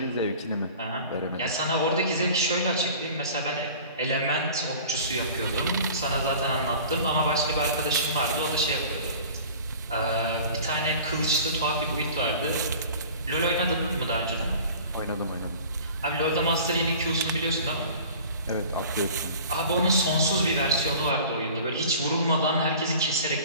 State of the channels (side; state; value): both; inverted; correlation -0.43